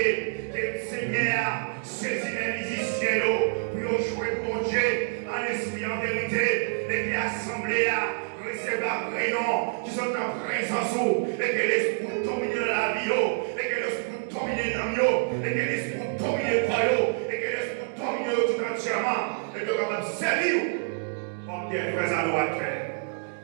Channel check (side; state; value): left; silent; digital silence